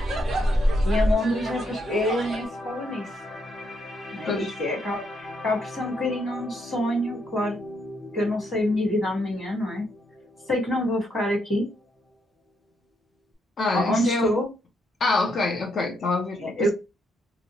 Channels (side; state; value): both; normal; correlation 0.76